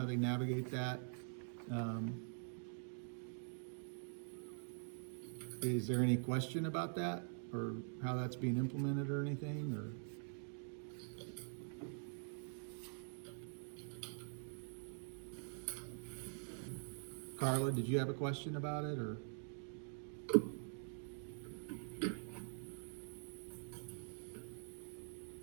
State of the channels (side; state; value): left; silent; digital silence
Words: they navigate that. Is there any question about that or how that's being implemented or anything, or? Carla, did you have a question about it, or?